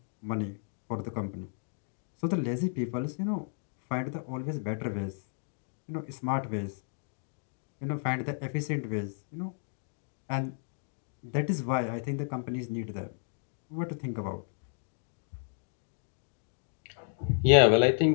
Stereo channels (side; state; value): right; silent; digital silence